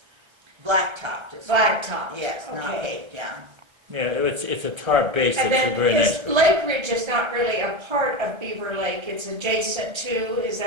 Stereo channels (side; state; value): left; late; 1.3 ms